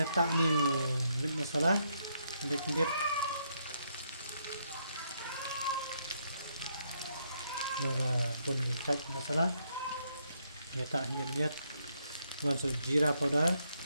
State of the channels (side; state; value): both; inverted; correlation -0.75